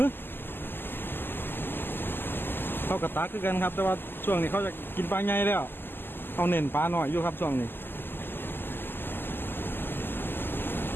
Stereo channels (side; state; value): right; late; 0.097 ms